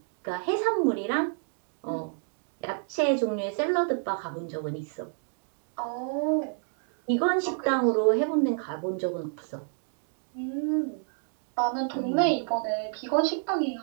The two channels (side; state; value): left; silent; 58 dB below the other